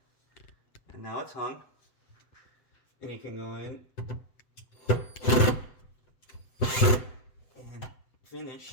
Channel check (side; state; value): right; late; 7.9 ms